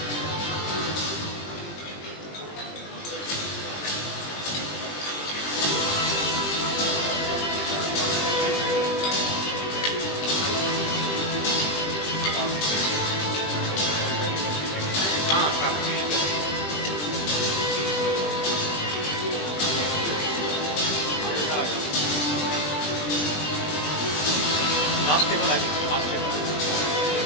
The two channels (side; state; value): right; late; 20 ms